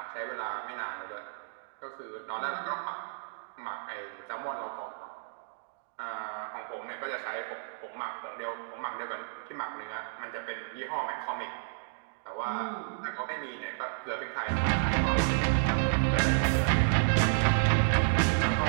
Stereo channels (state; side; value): silent; left; digital silence